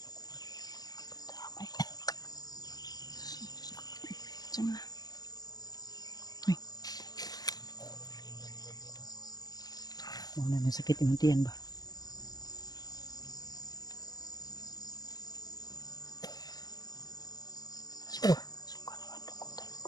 Damay. Saan na? Ay. Muna na sakit yung tiyan ba? Suka naman dukutan.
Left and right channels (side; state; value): right; late; 0.18 ms